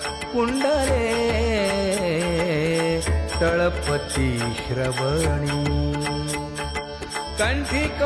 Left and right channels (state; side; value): identical; both; correlation 1.00